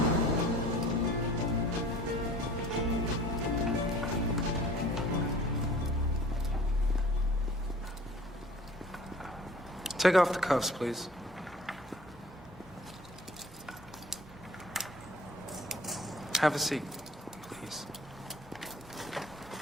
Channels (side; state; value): both; normal; correlation 0.48